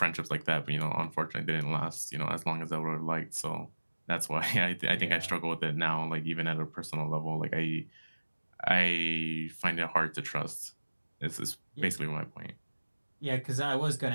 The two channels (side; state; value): both; inverted; correlation -1.00